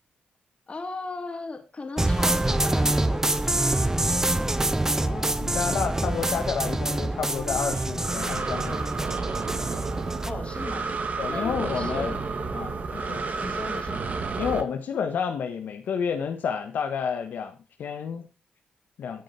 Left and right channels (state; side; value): normal; both; correlation 0.72